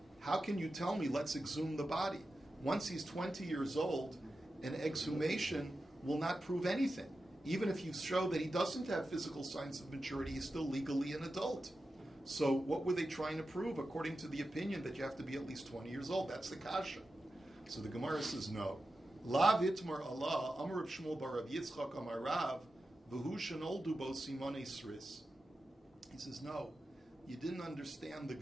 how can you tell me let's exhume the body? Once he's 20 years old, an exhumation will not prove anything. Even if you show that he doesn't have physical signs of maturity, he's still legally an adult. So what were they trying to prove according to the opinion that you have to be at least 20 years old? That's the kasha. So the Gemara says no. La vitmar Allah, Amar Rav Shmuel bar Rav Yitzchak Amar Rav, v'hu shenoldu bo simone sris. He says, no, you didn't understand the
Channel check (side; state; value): both; normal; correlation 0.92